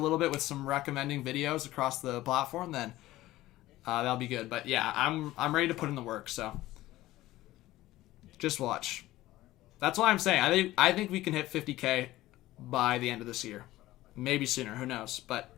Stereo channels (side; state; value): right; quieter; 16.4 dB